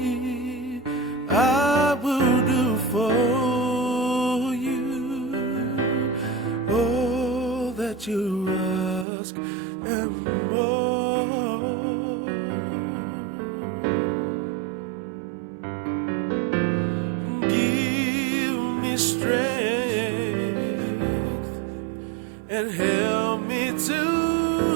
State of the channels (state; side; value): drops out; left; at 9.1 s